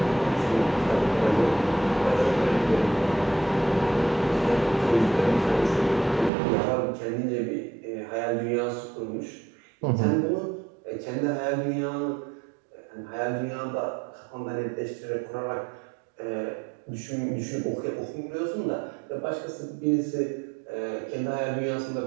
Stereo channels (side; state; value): left; drops out; at 6.3 s